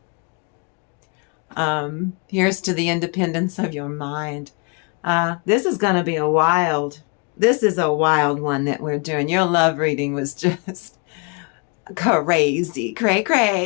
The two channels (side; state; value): right; quieter; 33.9 dB